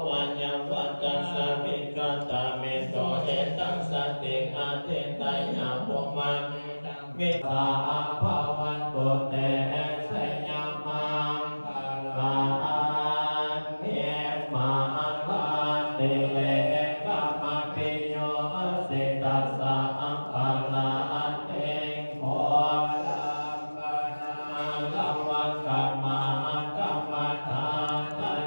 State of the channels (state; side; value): inverted; both; correlation -1.00